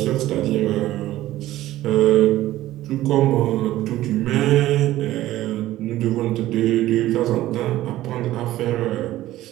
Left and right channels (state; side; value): quieter; left; 15.1 dB